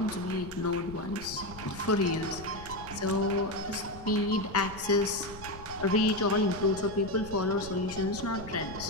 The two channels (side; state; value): left; noise; rumble, 15 dB below the sound